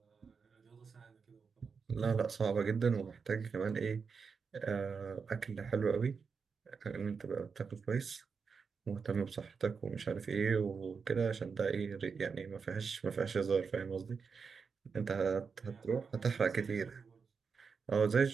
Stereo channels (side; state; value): left; quieter; 5.5 dB